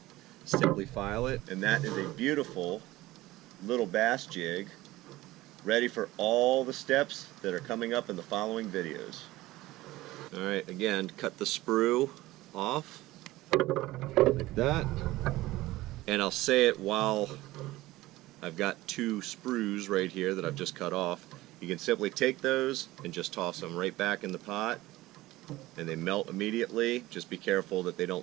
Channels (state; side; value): quieter; left; 17.8 dB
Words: simply file it, and that is a beautiful little bass jig ready for all the steps that are coming up in the following videos. Alright, again, cut the sprue off like that, and I'll say it while I've got 2 sprues right here that I've just cut off. You can simply take those and just toss them right back in the pot, and they melt immediately. Just be careful that they